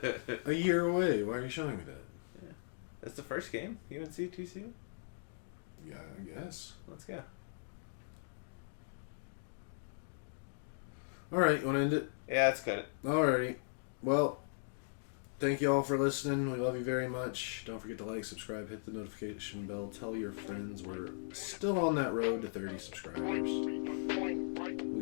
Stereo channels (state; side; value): silent; right; digital silence